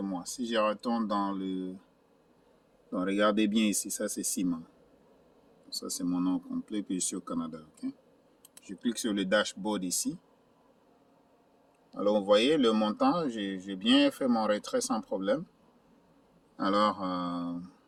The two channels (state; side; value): identical; both; correlation 1.00